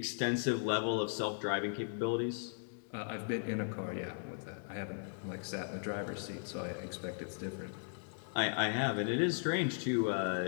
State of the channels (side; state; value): right; silent; digital silence